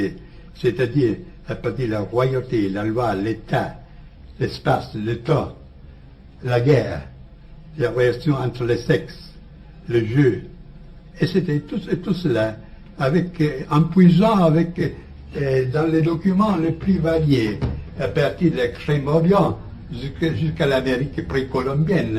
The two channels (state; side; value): identical; both; correlation 1.00